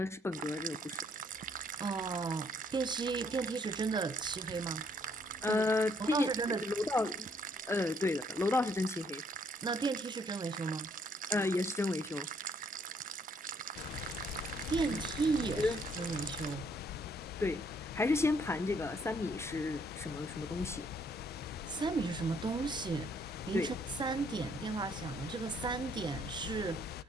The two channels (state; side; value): normal; both; correlation 0.67